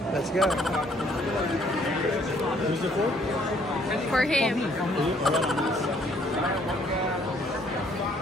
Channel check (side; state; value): both; normal; correlation 0.64